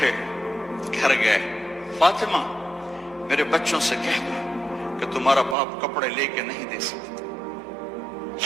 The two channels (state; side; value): drops out; left; at 5.6 s